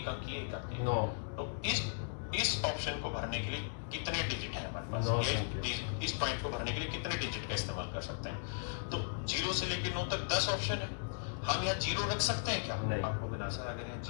अंक की, एक अंक की। 9। तो इस ऑप्शन को भरने के लिए कितने डिजिट है हमारे पास? 9 इस पॉइंट को भरने के लिए कितने डिजिट का इस्तेमाल कर सकते हैं? तो 0 से लेकर 9 तक 10 ऑप्शन है, हम यहाँ 0 रख सकते हैं क्या? नहीं। आपको बिना सर अगर यहाँ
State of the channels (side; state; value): right; silent; digital silence